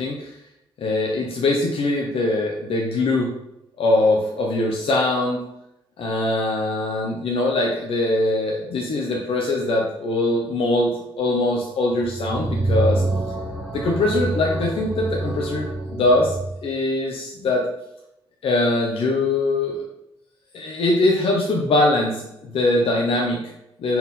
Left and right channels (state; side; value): normal; both; correlation 0.56